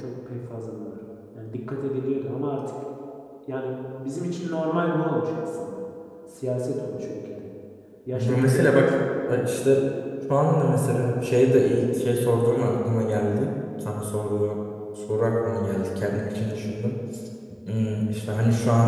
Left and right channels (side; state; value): both; identical; correlation 1.00